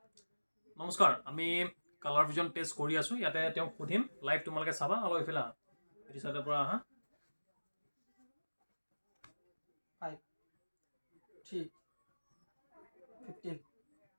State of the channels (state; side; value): inverted; both; correlation -1.00